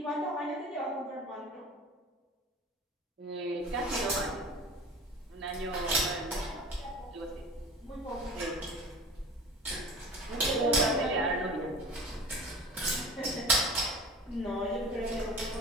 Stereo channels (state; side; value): normal; both; correlation 0.39